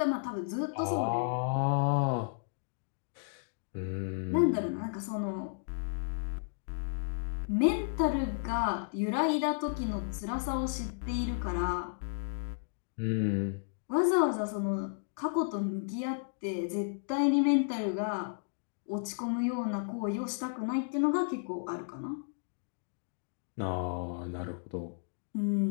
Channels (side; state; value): right; silent; digital silence